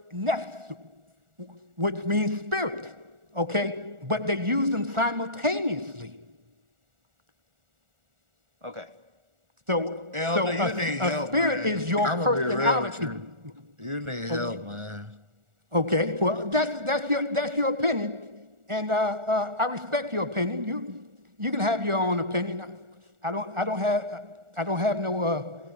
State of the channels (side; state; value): left; late; 1.4 ms